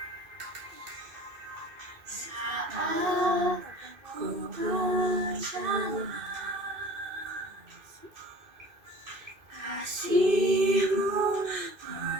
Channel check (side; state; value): left; late; 2.5 ms